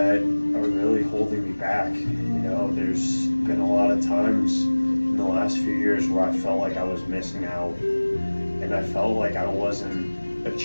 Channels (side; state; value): both; inverted; correlation -1.00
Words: are really holding me back. There's been a lot of times in the last few years where I felt like I was missing out, and I felt like I wasn't